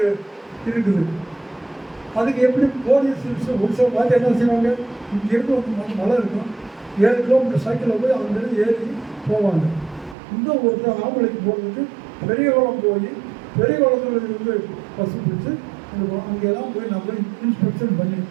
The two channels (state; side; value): drops out; left; at 10.2 s